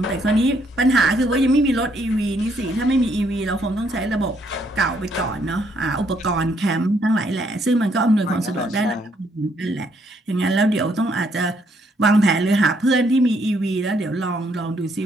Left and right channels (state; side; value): normal; both; correlation 0.71